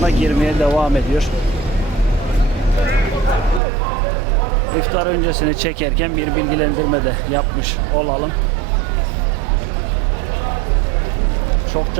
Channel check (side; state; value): left; drops out; at 3.6 s